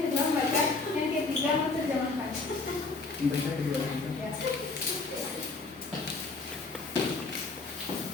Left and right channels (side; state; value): right; quieter; 3.8 dB